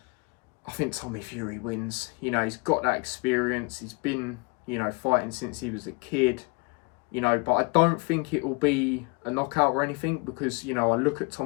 I think Tommy Fury wins. You know, he's got that experience. He's been, you know, fighting since he was a kid. You know, but I don't think it will be a knockout or anything, because, you know, I look at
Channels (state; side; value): quieter; right; 29.7 dB